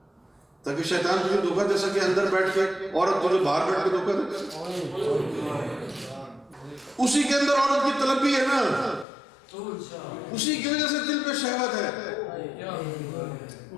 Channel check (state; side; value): drops out; right; at 9.1 s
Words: تاکہ شیطان تجھے دھوکہ دے سکے اندر بیٹھ کے، عورت تجھے باہر بیٹھ کے دھوکہ دے. اسی کے اندر عورت کی طلب بھی ہے نا، اسی کی وجہ سے دل پہ شہوت ہے.